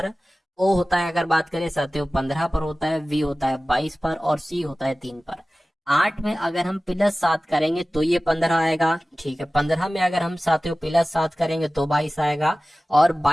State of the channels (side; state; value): both; normal; correlation 0.97